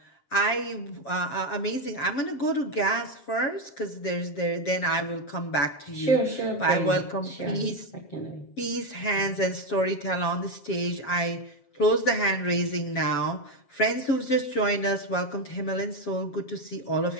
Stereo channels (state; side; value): late; right; 7.5 ms